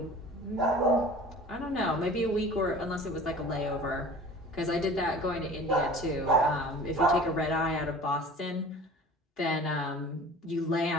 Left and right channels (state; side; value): normal; both; correlation 0.42